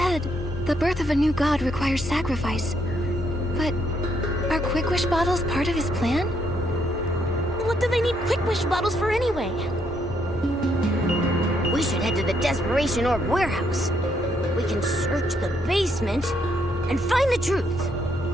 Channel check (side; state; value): both; normal; correlation 0.73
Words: the birth of a new god requires sacrifice. But are Quick Wish bottles part of his plan? What do they need Quick Wish bottles for anyway? We should head to the Desperation Orb warehouse. We can search the basement and find the truth.